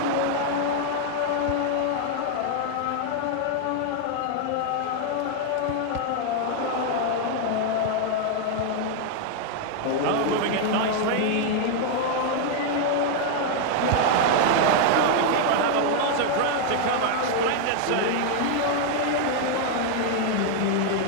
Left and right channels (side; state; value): both; different; correlation 0.00